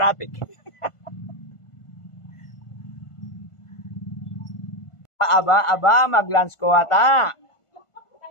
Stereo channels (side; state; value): right; late; 1.5 ms